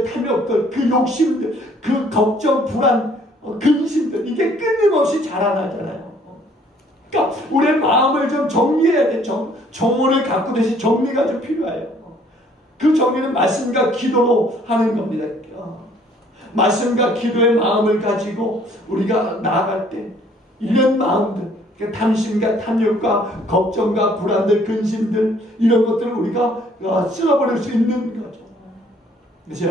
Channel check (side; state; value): both; normal; correlation 0.60